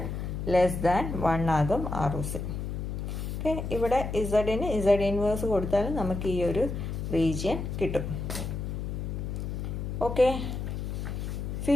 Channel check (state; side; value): noise; left; hum, 4 dB below the sound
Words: less than 1 ആകും ആർ ഒ സി. ഓക്കെ, ഇവിടെ ഇസഡിന് ഇസഡ് ഇൻവേഴ്സ് കൊടുത്താൽ നമുക്ക് ഈ ഒരു റീജിയൻ കിട്ടും. Okay,